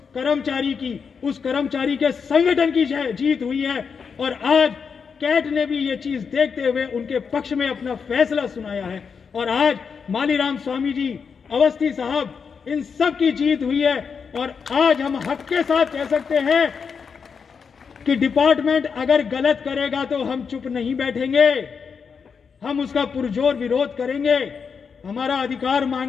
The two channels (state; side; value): quieter; right; 6.0 dB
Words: कर्मचारी के संगठन की जीत हुई है। और आज कैट ने भी ये चीज देखते हुए उनके पक्ष में अपना फैसला सुनाया है और आज मालीराम स्वामी जी, अवस्थी साहब, इन सब की जीत हुई है। और आज हम हक के साथ कह सकते हैं कि डिपार्टमेंट अगर गलत करेगा तो हम चुप नहीं बैठेंगे, हम उसका पुरजोर विरोध करेंगे, हमारा अधिकार